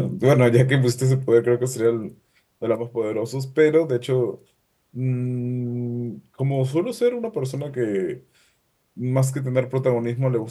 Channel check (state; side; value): identical; both; correlation 1.00